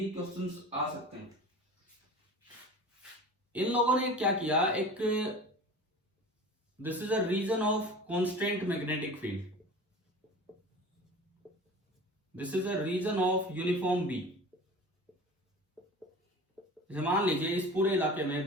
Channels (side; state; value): both; normal; correlation 0.37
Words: क्वेश्चंस आ सकते हैं। इन लोगों ने क्या किया, एक this is a region of constant magnetic field, this is a region of uniform B. मान लीजिए इस पूरे इलाके